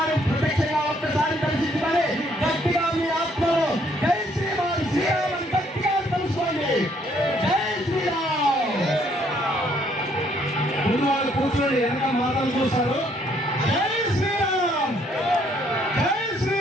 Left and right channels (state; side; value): normal; both; correlation 0.67